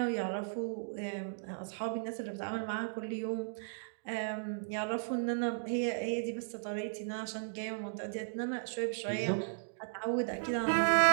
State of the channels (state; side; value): silent; left; digital silence